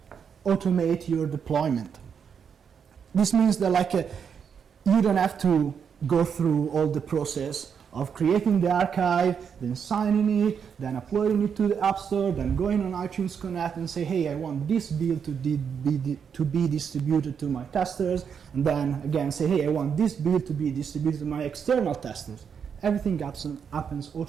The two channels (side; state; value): left; quieter; 7.1 dB